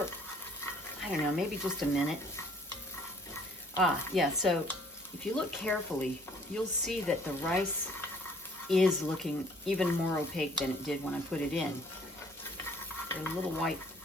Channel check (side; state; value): both; normal; correlation 0.59